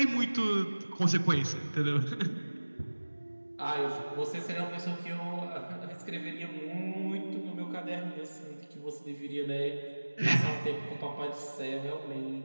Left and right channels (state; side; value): inverted; both; correlation -1.00